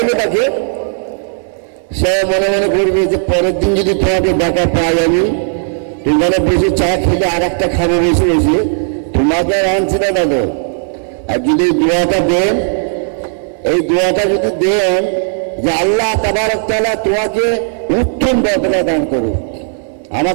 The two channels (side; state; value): left; silent; digital silence